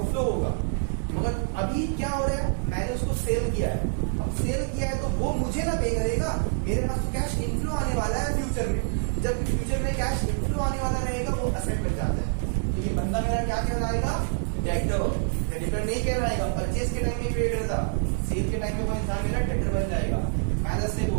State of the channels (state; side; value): silent; left; digital silence